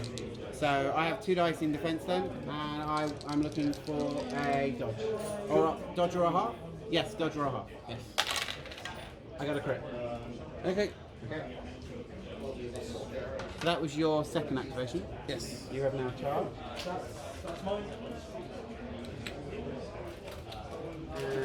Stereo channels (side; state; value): both; identical; correlation 1.00